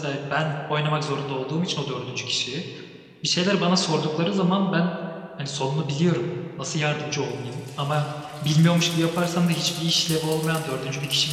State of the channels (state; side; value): identical; both; correlation 1.00